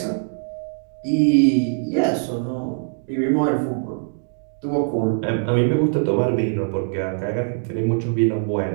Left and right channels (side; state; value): left; silent; digital silence